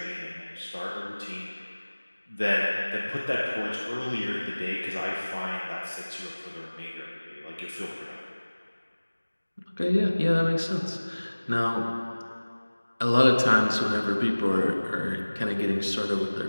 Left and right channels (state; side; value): inverted; both; correlation -1.00